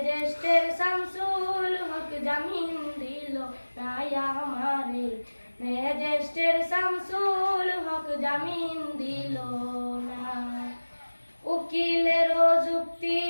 শামসুল হক জামিন দিল না আমারে, ম্যাজিস্ট্রেট শামসুল হক জামিন দিল না। উকিলের যুক্তি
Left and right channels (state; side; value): inverted; both; correlation -1.00